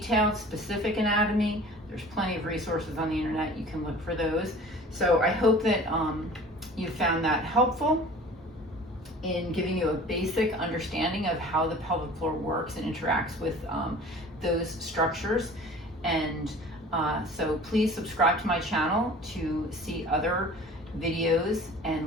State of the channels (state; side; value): normal; both; correlation 0.44